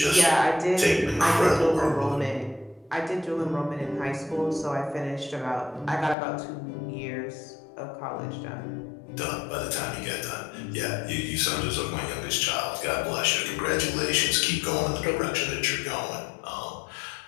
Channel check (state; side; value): drops out; right; at 6.2 s